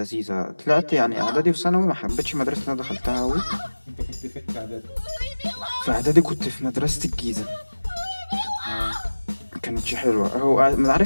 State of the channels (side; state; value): both; inverted; correlation -1.00